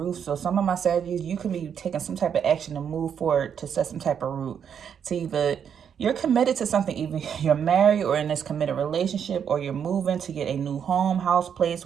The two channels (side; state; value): left; quieter; 7.9 dB